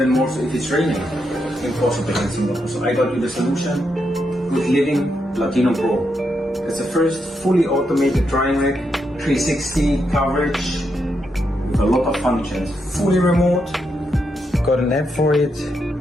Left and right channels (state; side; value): normal; both; correlation 0.82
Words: more so if it's raining. Impossible in Singapore. So I got you the solution, GoodLiving Latino Pro. It's the first fully automated drying rack, 360 coverage, with a lot of functions. Fully remote. Got an app for it,